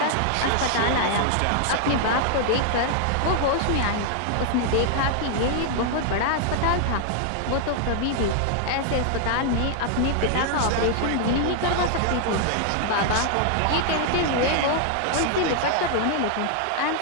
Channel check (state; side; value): different; both; correlation 0.00